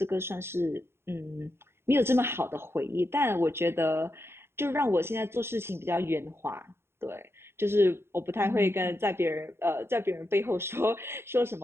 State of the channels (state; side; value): late; left; 0.12 ms